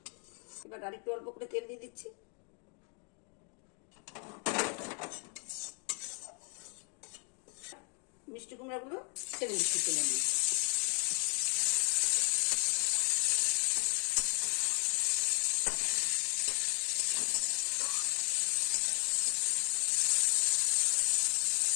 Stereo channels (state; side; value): quieter; right; 31.3 dB